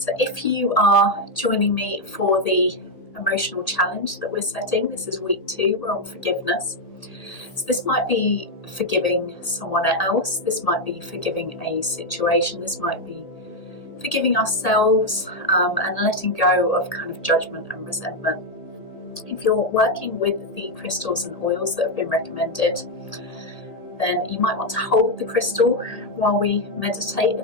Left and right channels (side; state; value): right; late; 1.9 ms